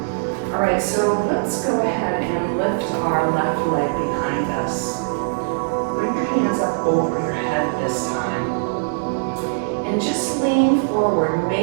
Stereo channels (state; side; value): silent; left; digital silence